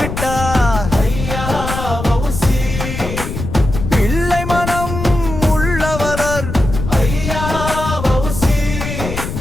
பிள்ளை மனம் உள்ளவர்,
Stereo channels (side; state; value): left; noise; rumble, 6 dB below the sound